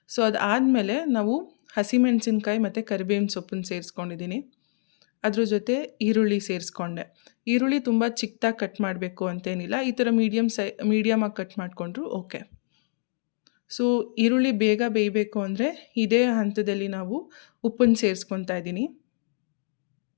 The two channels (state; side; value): silent; right; digital silence